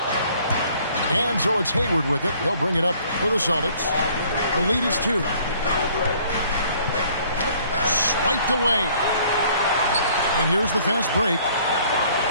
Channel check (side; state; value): both; inverted; correlation -0.58